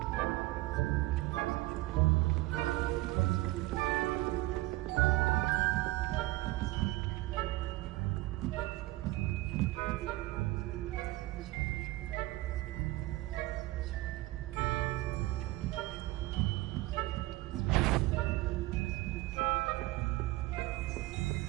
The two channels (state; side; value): quieter; left; 18.9 dB